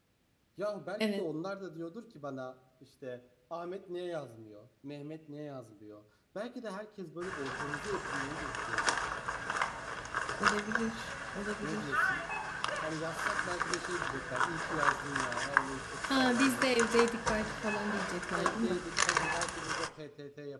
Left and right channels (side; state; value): both; identical; correlation 1.00